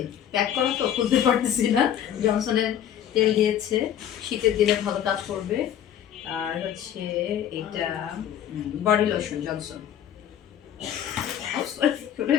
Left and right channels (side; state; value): right; quieter; 10.1 dB